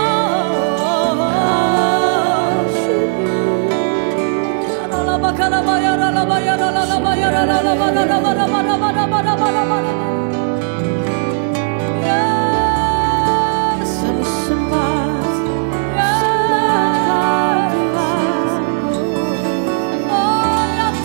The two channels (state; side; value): silent; left; 68 dB below the other